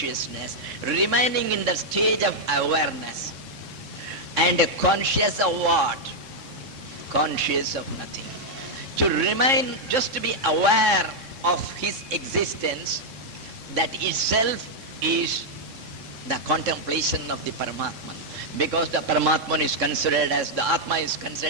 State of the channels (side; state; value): left; late; 3.7 ms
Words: remaining in the stage of awareness. And conscious of what? Conscious of nothing. To remain, just to be aware of his existence, that itself is the contemplation of the Paramatman. Because the Paramatman is considered as, the Atma is